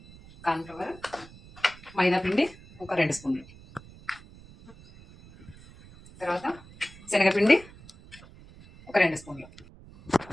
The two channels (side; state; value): right; noise; rumble, 21 dB below the sound